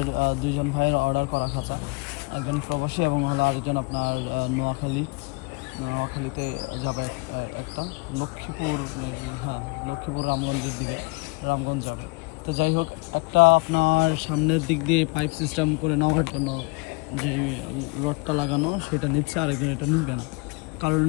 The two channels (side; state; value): right; quieter; 28.3 dB